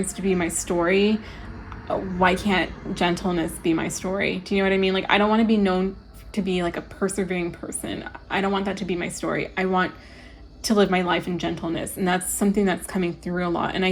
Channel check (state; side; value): identical; both; correlation 1.00